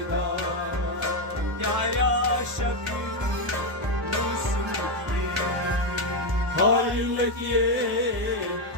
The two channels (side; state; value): left; late; 1.0 ms